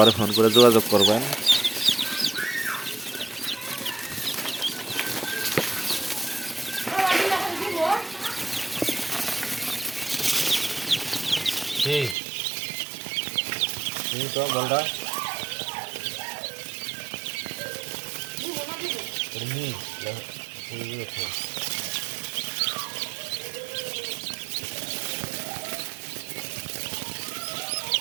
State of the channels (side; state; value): left; drops out; at 12.2 s